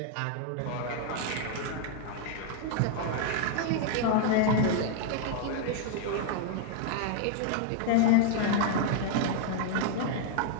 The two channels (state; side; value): different; both; correlation 0.00